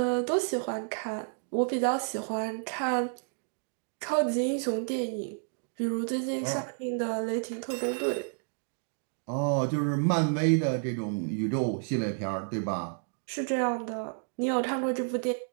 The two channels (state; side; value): silent; left; 57 dB below the other